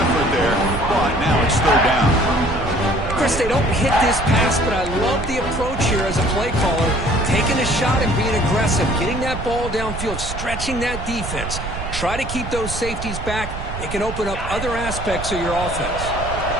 there, but now it's 3rd down. Chris, they don't hit this pass, but I love the approach here as a play caller. Taking a shot and being aggressive, getting that ball downfield, stretching that defense. Try to keep those safeties back. It can open up other aspects of your offense.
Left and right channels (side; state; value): right; noise; rumble, 7 dB below the sound